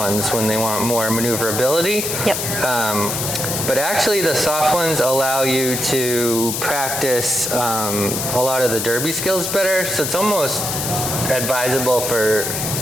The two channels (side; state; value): left; noise; hiss, 2 dB below the sound